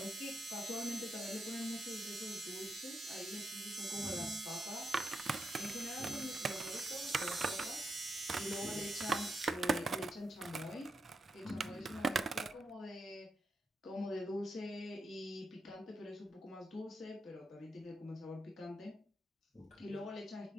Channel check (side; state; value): both; normal; correlation 0.82